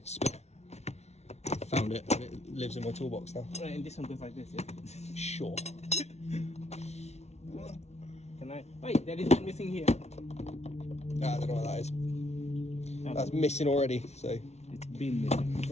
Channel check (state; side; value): late; right; 0.31 ms